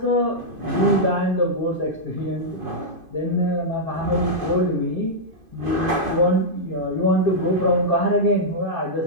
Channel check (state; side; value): late; left; 2.5 ms